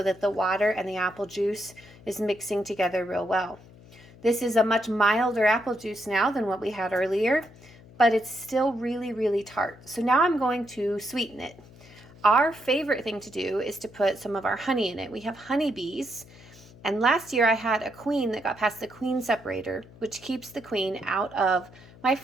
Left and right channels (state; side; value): noise; left; hum, 22 dB below the sound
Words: that the water and the apple juice is mixing together real well. This is a much milder apple juice now than what we had earlier, but it's still really, really tart. So now I'm going to sweeten it. Our favorite thing to do is to put some of our honey in it. We have honeybees, and last year I had a queen that got past the queen separator, which keeps the queen out of my